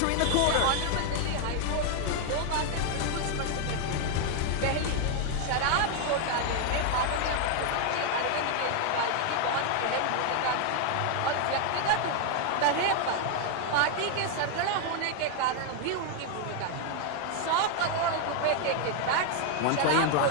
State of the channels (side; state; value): both; different; correlation 0.00